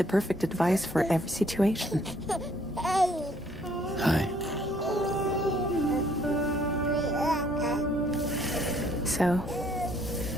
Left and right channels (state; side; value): normal; both; correlation 0.64